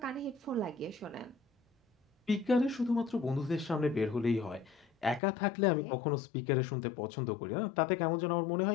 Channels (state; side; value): drops out; right; at 5.2 s